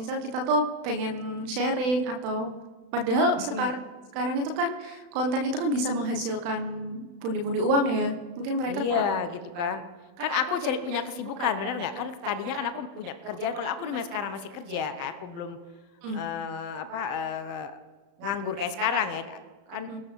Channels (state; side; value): late; left; 35 ms